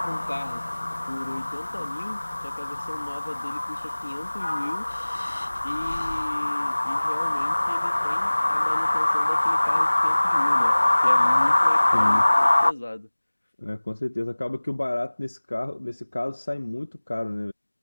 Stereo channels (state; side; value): inverted; both; correlation -1.00